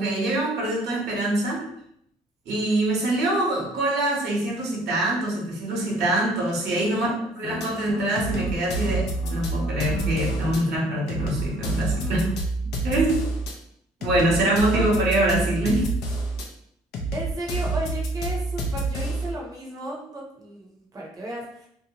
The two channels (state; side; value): normal; both; correlation 0.58